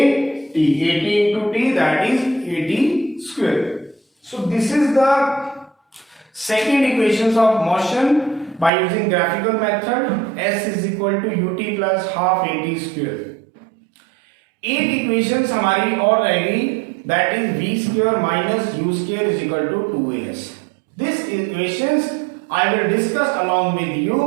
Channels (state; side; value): drops out; left; at 8.7 s